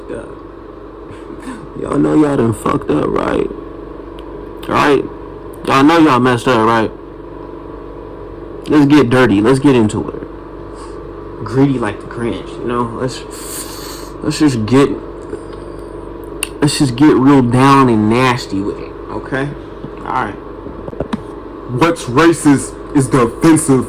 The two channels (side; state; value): both; identical; correlation 1.00